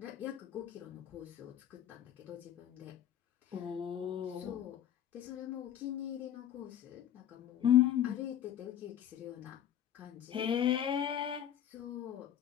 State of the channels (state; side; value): quieter; right; 10.3 dB